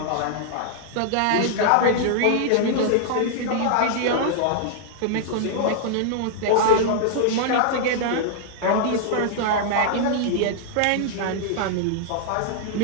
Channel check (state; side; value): different; both; correlation -0.01